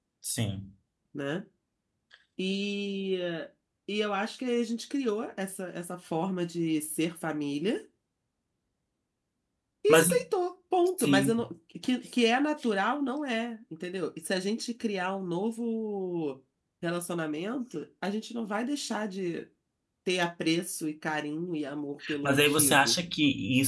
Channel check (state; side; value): identical; both; correlation 1.00